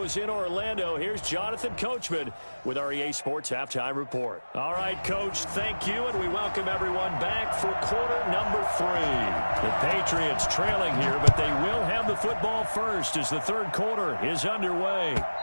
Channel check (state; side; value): inverted; both; correlation -1.00